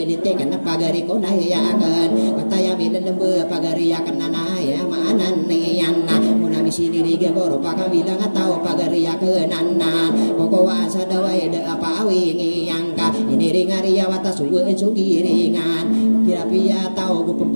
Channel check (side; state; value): both; inverted; correlation -1.00